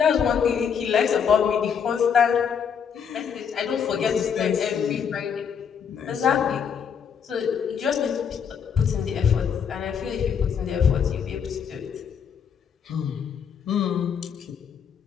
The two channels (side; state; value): right; quieter; 7.3 dB